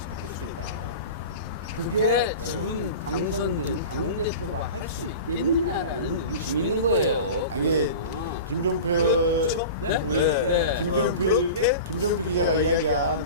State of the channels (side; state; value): both; inverted; correlation -0.33